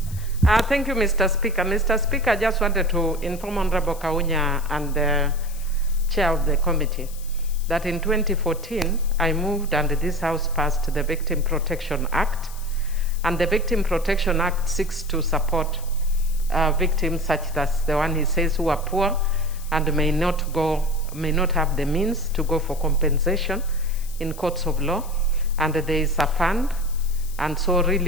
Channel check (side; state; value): left; noise; hiss, 18 dB below the sound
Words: Thank you, Mr. Speaker. Mr. Speaker, I just wanted to inform Honorable Kaunya and the chair of the committee that in 2014, I moved and this House passed the Victim Protection Act. And the Victim Protection Act seeks to support victims such as the one he says who are poor and may not have the means to go for compensation in courts of law. And there is a fund. And so